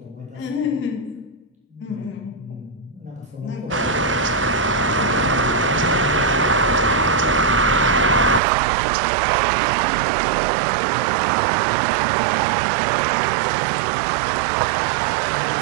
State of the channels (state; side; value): drops out; left; at 8.4 s